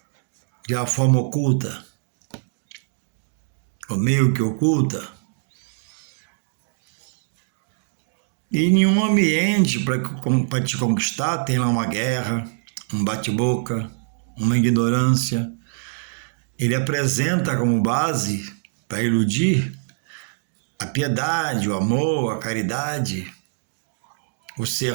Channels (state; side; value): silent; left; digital silence